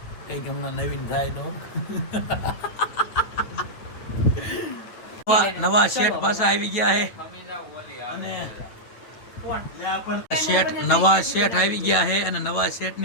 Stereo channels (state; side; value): late; right; 8.7 ms